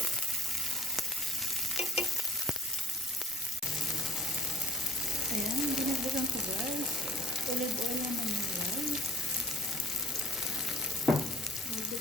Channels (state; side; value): normal; both; correlation 0.54